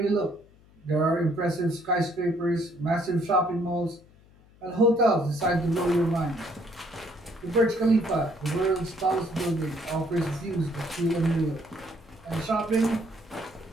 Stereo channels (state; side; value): noise; left; hum, 27 dB below the sound